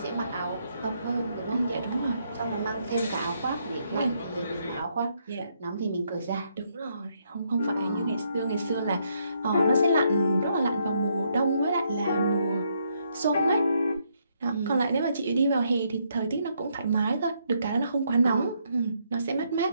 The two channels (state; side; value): inverted; both; correlation -0.74